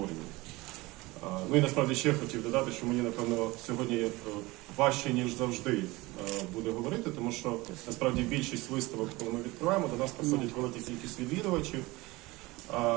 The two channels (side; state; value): left; quieter; 21.5 dB